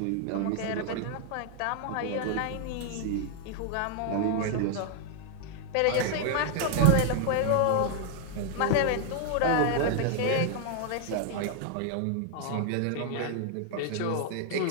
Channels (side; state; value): both; different; correlation 0.00